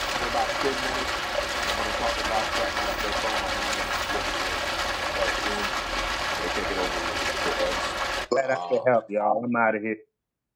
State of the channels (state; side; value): identical; both; correlation 1.00